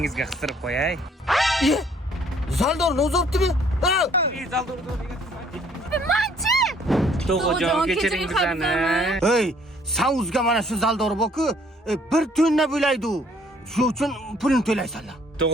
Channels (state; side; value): normal; both; correlation 0.61